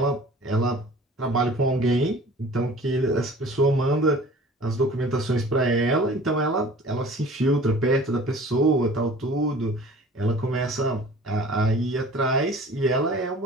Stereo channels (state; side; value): normal; both; correlation 0.46